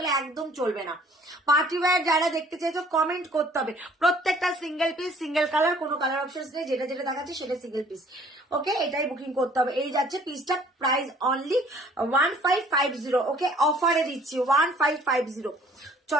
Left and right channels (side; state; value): both; normal; correlation 0.56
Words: একদম চলবে না। পার্টি ওয়্যার যারা দেখতে চাইছো কমেন্ট করতে হবে, প্রত্যেকটা সিঙ্গেল পিস, সিঙ্গেল কালার, কোনো কালার অপশন নেই, যেটা যেটা দেখাচ্ছে সেটা সিঙ্গেল পিস। ওকে, এটাই বুকিং করতে হবে। এই যাচ্ছে পিসটা, প্রাইস অনলি 1550। ওকে, অফারে দিচ্ছি 1550।